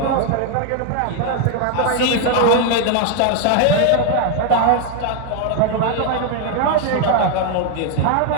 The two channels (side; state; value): both; different; correlation 0.01